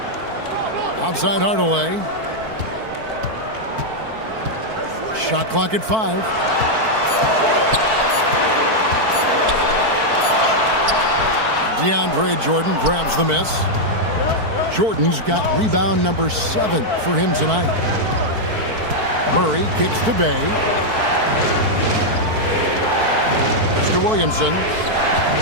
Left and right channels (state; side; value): late; left; 4.5 ms